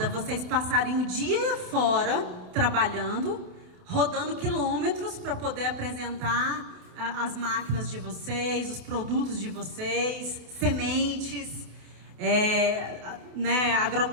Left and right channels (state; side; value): late; left; 28 ms